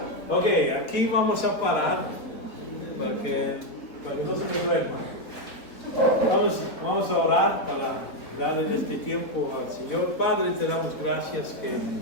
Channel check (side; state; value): right; late; 3.9 ms